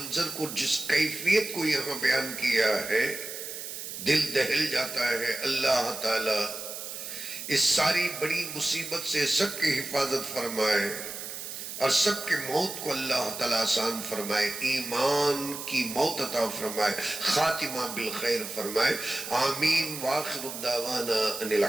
کو، جس کیفیت کو یہاں بیان کیا ہے، دل دہل جاتا ہے۔ اللہ تعالیٰ اس ساری بڑی مصیبت سے سب کی حفاظت فرمائے اور سب کے موت کو اللہ تعالیٰ آسان فرمائے، ایمان کی موت عطا فرمائے، خاتمہ بالخیر فرمائے۔ آمین۔ وآخر الدعوانا ان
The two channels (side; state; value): right; noise; hiss, 8 dB below the sound